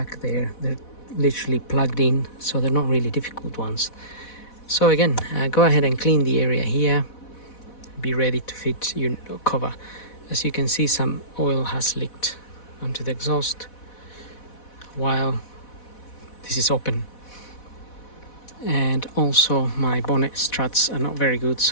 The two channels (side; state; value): right; late; 4.1 ms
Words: there. They're literally plugged in, so they're not really difficult ones. So again, go ahead and clean the area here. Be ready to fit your cover. As you can see, some oil has leaked onto the exhaust while this is open. And also my bonnet struts are not very good,